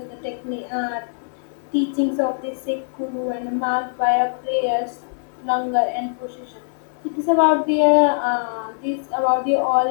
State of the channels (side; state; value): right; silent; digital silence